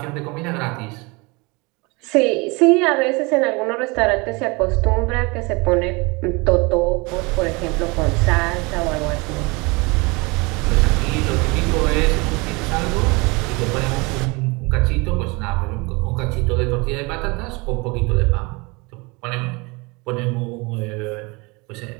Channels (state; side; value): quieter; left; 26.9 dB